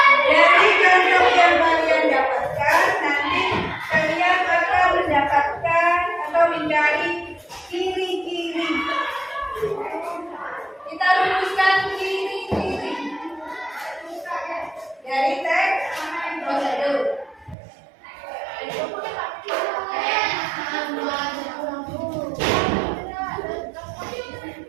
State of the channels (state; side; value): drops out; left; at 17.6 s